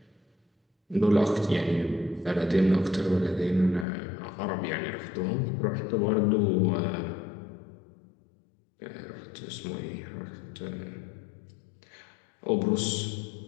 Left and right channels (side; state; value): right; drops out; at 3.9 s